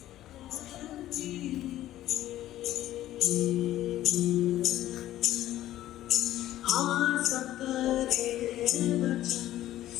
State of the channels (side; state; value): right; quieter; 13.7 dB